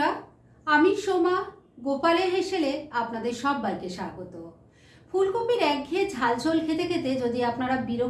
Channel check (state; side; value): identical; both; correlation 1.00